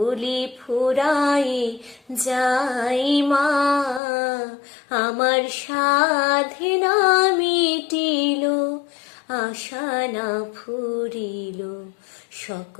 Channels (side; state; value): right; drops out; at 4.0 s